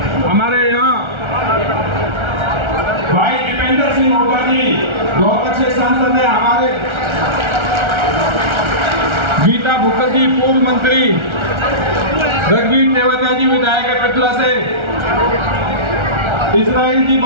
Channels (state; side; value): late; left; 1.3 ms